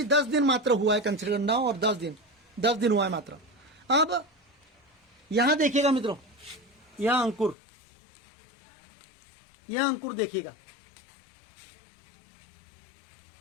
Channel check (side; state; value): right; drops out; at 7.6 s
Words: 10 दिन मात्र हुआ है कंसीडर करना, और 10 दिन हुआ है मात्र। अब यहां देखिएगा मित्रों, यह अंकुर देखिएगा